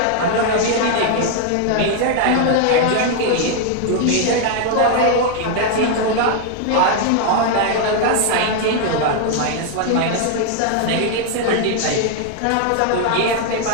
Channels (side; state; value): both; different; correlation 0.00